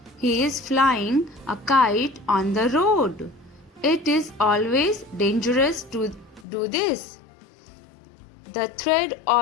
He is flying a kite on the road. It is always dangerous to do this. The thread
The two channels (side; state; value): right; drops out; at 6.5 s